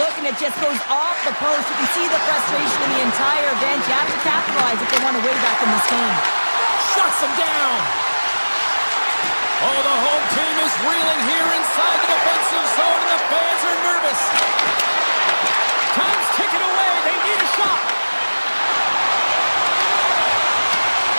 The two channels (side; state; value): both; inverted; correlation -1.00